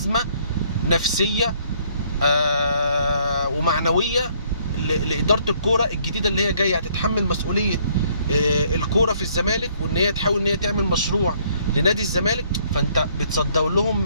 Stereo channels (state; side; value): inverted; both; correlation -0.65